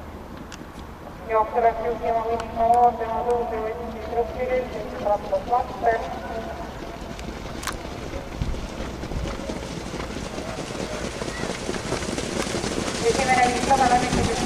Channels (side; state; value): both; identical; correlation 1.00